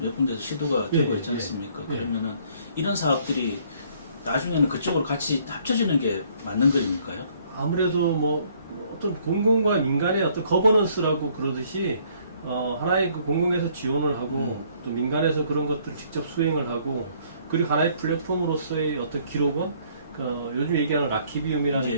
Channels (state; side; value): inverted; both; correlation -0.62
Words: 군데서 시도가 예, 되고 있지 예, 않습니까? 예. 그러면은 이런 사업들이 나중에는 그쪽으로 같이 합쳐지는 게 맞는 거입니까요? 아무래도 뭐 어떤 공공과 민간의 어떤 거버넌스라고 그러듯이 하나의 그 공공에서 지원을 하고 또 민간에서 그런 것들을 직접 수행을 하고 그리고 하나의 플랫폼으로서의 어떤 기록원 요즘 얘기하는 라키비움이라는 예.